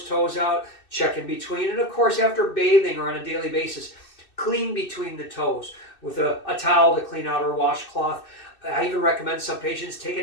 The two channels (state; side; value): late; right; 2.6 ms